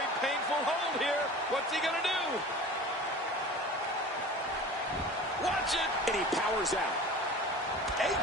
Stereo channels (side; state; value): both; normal; correlation 0.39